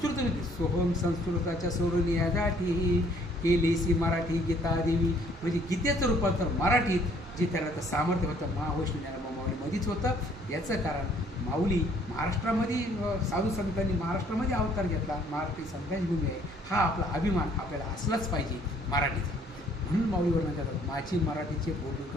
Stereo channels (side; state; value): both; normal; correlation 0.61